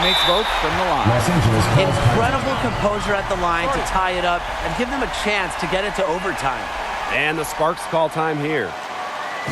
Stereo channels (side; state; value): both; identical; correlation 1.00